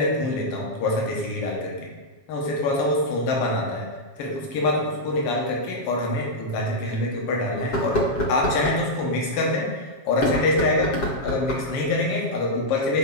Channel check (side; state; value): right; late; 7.4 ms